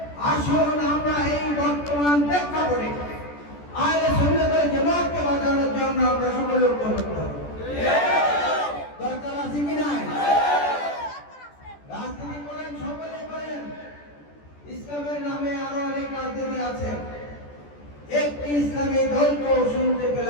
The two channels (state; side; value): late; right; 14 ms